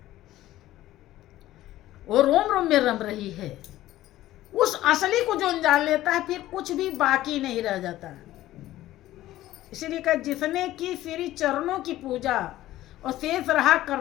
वो रोम रोम में रम रही है। उस असली को जो जान लेता है फिर कुछ भी बाकी नहीं रह जाता। इसीलिए कहा जिसने की श्री चरणों की पूजा और शेष रहा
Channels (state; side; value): quieter; right; 14.9 dB